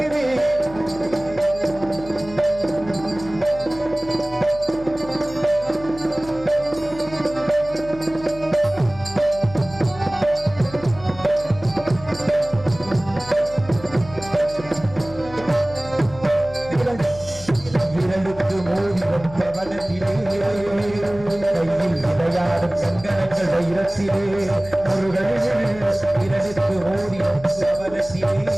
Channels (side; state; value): left; noise; hum, 16 dB below the sound